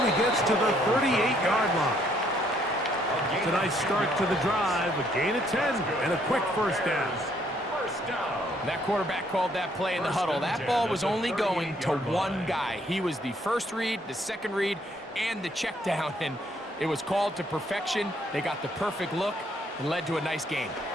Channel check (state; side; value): normal; both; correlation 0.68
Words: he gets to the 38-yard line. It's a nice start to the drive, a gain of 10, and a quick first down. That quarterback called that play in the huddle. That ball was only going to one guy. He was the first read, the second read, and the check down, and it was called to perfection. They got the perfect look and led to a nice game.